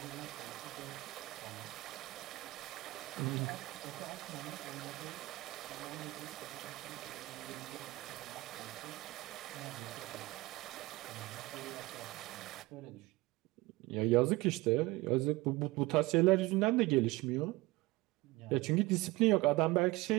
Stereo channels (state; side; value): quieter; left; 20.6 dB